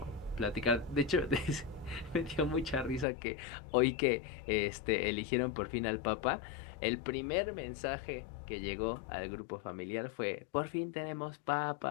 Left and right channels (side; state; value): right; drops out; at 3.1 s